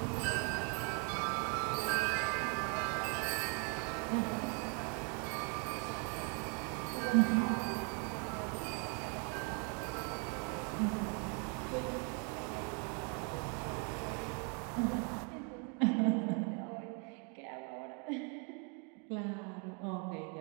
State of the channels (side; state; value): left; quieter; 37.7 dB